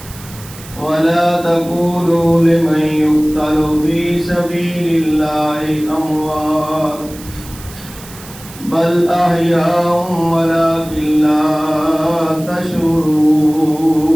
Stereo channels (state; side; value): noise; right; hiss, 18 dB below the sound